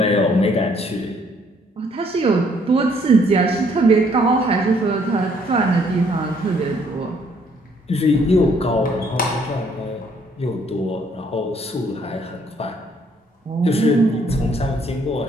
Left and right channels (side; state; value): both; normal; correlation 0.66